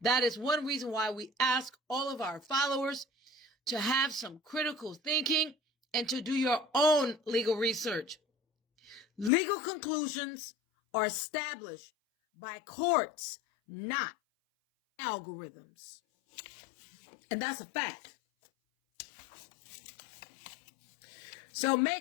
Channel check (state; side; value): drops out; right; at 9.3 s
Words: is one reason why we ask all of our followers to have some critical thinking and to do your own legal research. Legal conclusions are established by courts, not algorithms. And that's a fact. So